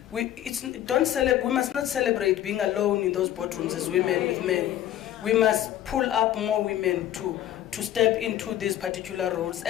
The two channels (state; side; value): quieter; right; 12.2 dB